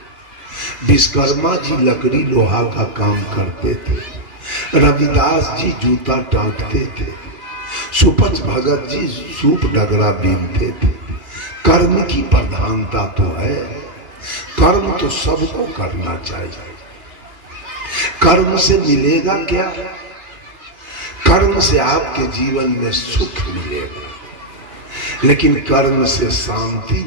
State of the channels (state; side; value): late; left; 2.4 ms